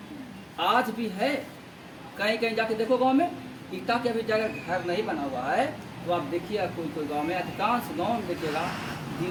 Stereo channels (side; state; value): both; identical; correlation 1.00